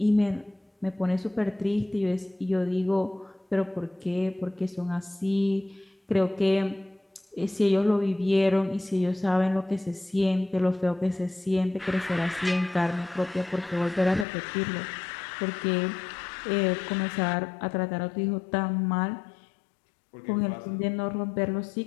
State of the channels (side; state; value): right; drops out; at 14.2 s